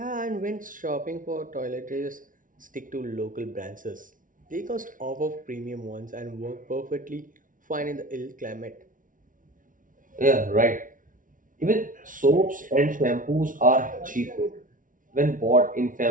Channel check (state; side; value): late; left; 0.38 ms